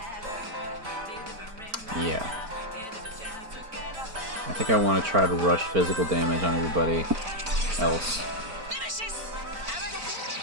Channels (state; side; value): late; left; 4.4 ms